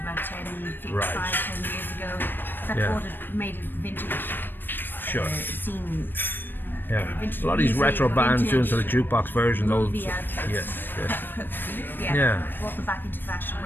10 years ago, that made it vintage. Sure. Scene. Yeah. A lot of these retro bands doing sort of jukebox versions. Yes. Brought them back into fashion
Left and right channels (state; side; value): late; right; 0.095 ms